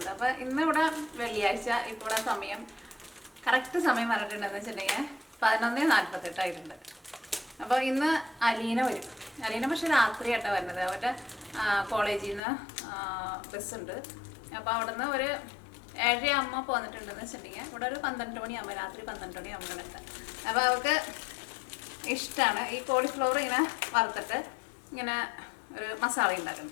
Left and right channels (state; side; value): drops out; right; at 12.4 s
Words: അപ്പോൾ ഇന്ന് ഇവിടെ വെള്ളിയാഴ്ച, ഇപ്പോൾ ഇവിടെ സമയം കറക്റ്റ് സമയം പറഞ്ഞിട്ടുണ്ടെന്ന് വെച്ചിട്ടുണ്ടെങ്കിൽ 11:48 ആയിട്ടുണ്ട്. അപ്പോൾ ഇന്ന് അലീന വരും. അലീന പക്ഷെ രാത്രിയായിട്ടാണ് വരുന്നത്. അവരുടെ കോളേജിൽ നിന്ന് ബസ്സുണ്ട്. അപ്പോൾ അവിടെ നിന്ന് ഒരു 7:30 പോന്നിട്ടുണ്ടെന്ന് വെച്ചിട്ടുണ്ടെങ്കിൽ ഇവിടെ ഒരു 12 മണിയാകുമ്പോൾ, രാത്രി 12 മണിയാകുമ്പോൾ എത്താം. അപ്പോൾ അവർക്ക് ഇഷ്ടമാണ് ഈ കോളിഫ്ലവർ ഇങ്ങനെ വറുത്തിട്ട് ഇങ്ങനെ ഒരു മസാല